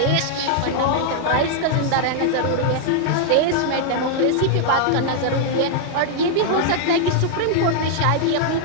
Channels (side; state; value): both; different; correlation -0.01